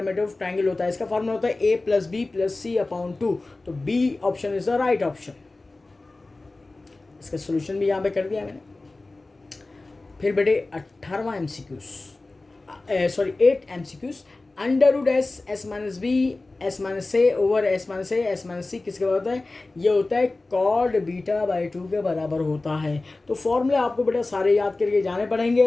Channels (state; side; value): quieter; right; 3.2 dB